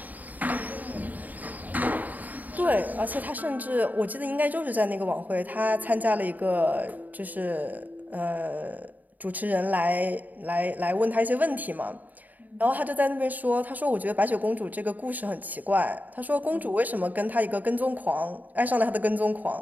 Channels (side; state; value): left; late; 0.081 ms